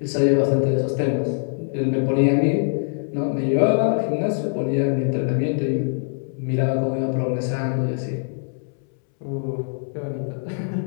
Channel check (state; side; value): silent; right; 63 dB below the other